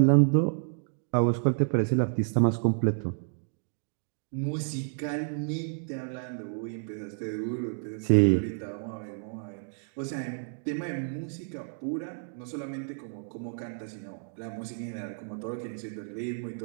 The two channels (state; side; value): silent; left; digital silence